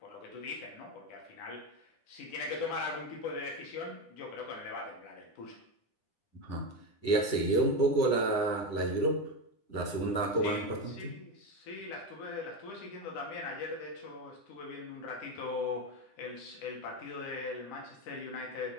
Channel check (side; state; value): right; late; 9.9 ms